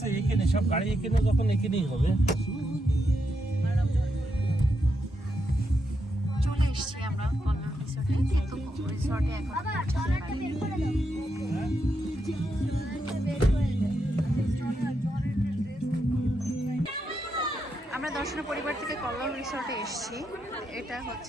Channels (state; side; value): normal; both; correlation 0.83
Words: এখানে সব গাড়ি এখানে যখন এখানেই হবে। চলে এসেছি আমরা কল্যাণ রিসোর্টে, কিন্তু রিসোর্টে এখন আমরা দর্শনা পরিবার থেকে কল্যাণ রিসোর্টে এসেছি। এটা